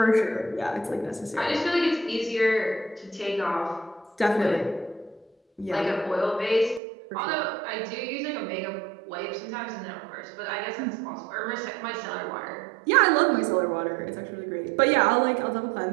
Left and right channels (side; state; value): left; drops out; at 6.8 s